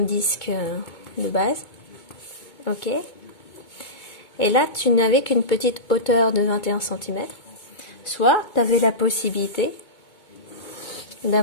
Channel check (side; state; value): right; late; 2.2 ms